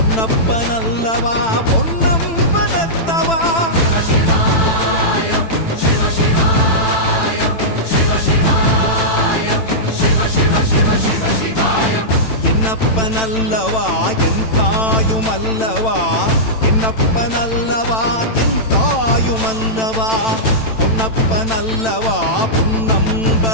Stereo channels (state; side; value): late; right; 9.0 ms